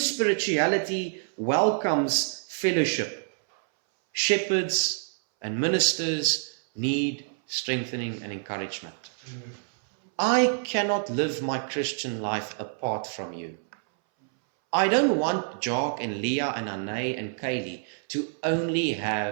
welcomes fellowship. Shepherds and ministers need strengthening and encouragement. I cannot live my Christian life apart from you. I don't want Jock and Leah and Anay and Kaylee to only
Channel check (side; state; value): left; silent; 60 dB below the other